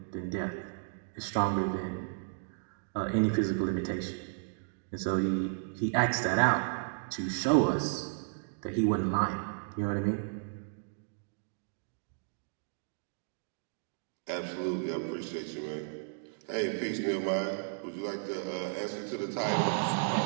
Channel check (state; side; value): silent; left; digital silence